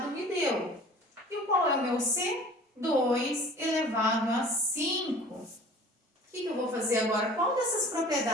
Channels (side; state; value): both; normal; correlation 0.45